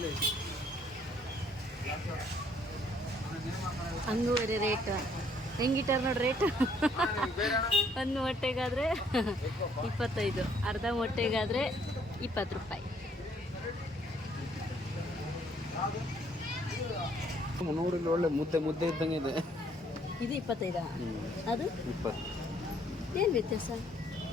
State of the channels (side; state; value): both; normal; correlation 0.64